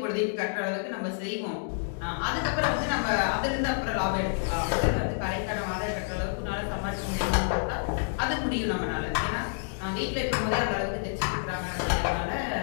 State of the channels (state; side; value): silent; right; 59 dB below the other